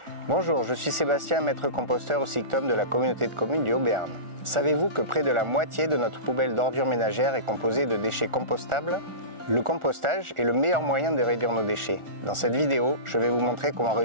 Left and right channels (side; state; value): left; late; 1.4 ms